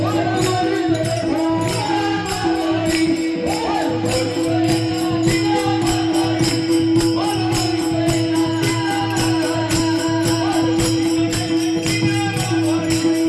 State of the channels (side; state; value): both; identical; correlation 1.00